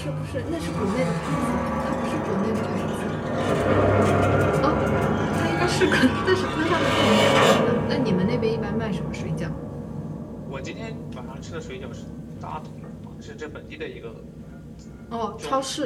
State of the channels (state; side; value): identical; both; correlation 1.00